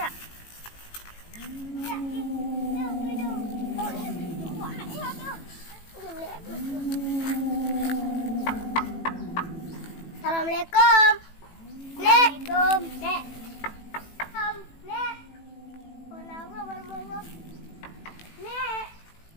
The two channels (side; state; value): right; late; 18 ms